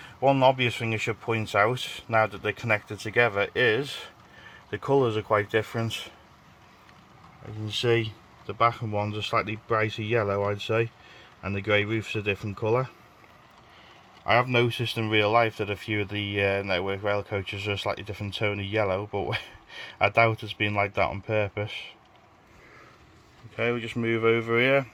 One obvious thing I should point out, now that they're connected together, is the colours are quite different. You can see the Bachmann ones are slightly brighter yellow, I'd say, and the grey roof's a different colour. I have noticed in real life that a few of the network rail coaches are a slightly different tone of yellow, but I doubt it's been like that on purpose. Okay, we'll just move over here.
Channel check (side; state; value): both; identical; correlation 1.00